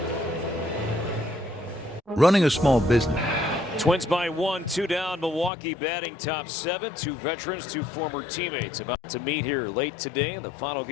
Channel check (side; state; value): right; drops out; at 5.5 s